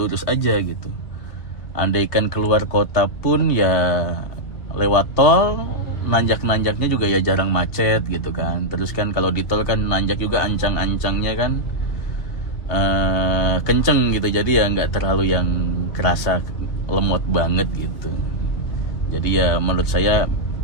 aja gitu. Andaikan keluar kota pun ya lewat tol, nanjak-nanjaknya juga ya jarang macet gitu kan. Terus kan kalau di tol kan nanjak juga ancang-ancangnya kan kenceng gitu, jadi ya nggak terlalu yang kerasa lemot banget gitu. Jadi ya menurut saya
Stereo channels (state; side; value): late; right; 2.8 ms